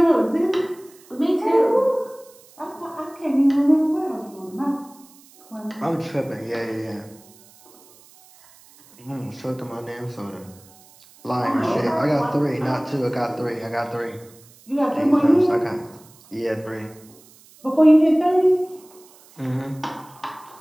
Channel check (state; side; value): noise; right; hiss, 26 dB below the sound